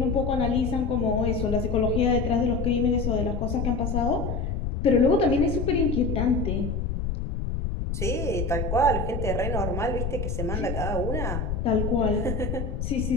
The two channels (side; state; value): left; noise; rumble, 2 dB below the sound